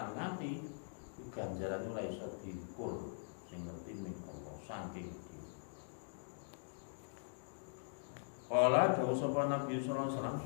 ngati ganjaran ora iso diukur sing ngerti ning Allah saking. Kala dawuh sapa Nabi sallallahu alaihi wasallam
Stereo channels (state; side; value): silent; right; digital silence